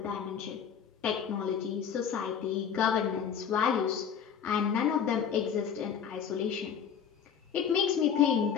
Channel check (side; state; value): right; quieter; 7.7 dB